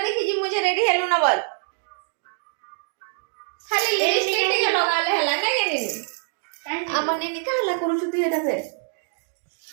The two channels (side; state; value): left; silent; digital silence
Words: देखि जी मुझे रेडी हेलो न बोल खाली लिपस्टिक टिके लगाले हला नै गेनी आमने निकाला करू छुती हेता फे